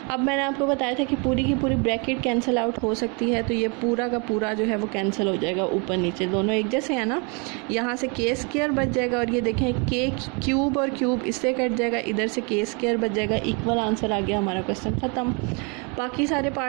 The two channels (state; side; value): quieter; left; 33.3 dB